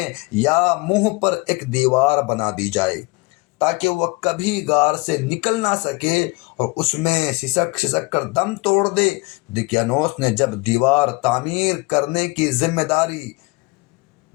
یا منہ پر ایک دیوار بنا دی جائے تاکہ وہ کبھی غار سے نکل نہ سکے اور اس میں سسک سسک کر دم توڑ دے۔ دقیانوس نے جب دیوار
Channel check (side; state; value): right; quieter; 25.5 dB